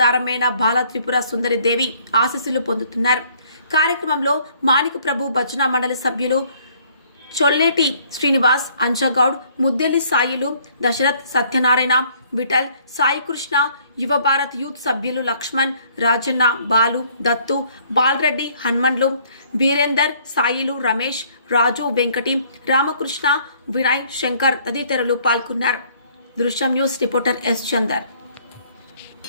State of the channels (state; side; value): inverted; both; correlation -0.61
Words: బాల త్రిపుర సుందరి దేవి ఆశీస్సులు పొందుతున్నారు. కార్యక్రమంలో మాణిక ప్రభు భజన మండలి సభ్యులు చొల్లేటి శ్రీనివాస్, అంజగౌడ్, ముద్దెల్లి సాయిలు, దశరథ్, సత్యనారాయణ, విఠల్, సాయికృష్ణ, యువ భారత్ యూత్ సభ్యులు లక్ష్మణ్, రాజన్న, బాలు, దత్తు, బాలరెడ్డి, హన్మన్లు, వీరేందర్, సాయిలు, రమేష్, రాజు, వెంకటి, రామకృష్ణ, వినయ్, శంకర్ తదితరులు పాల్గొన్నారు. దృశ్యం న్యూస్ రిపోర్టర్ ఎస్ చందర్.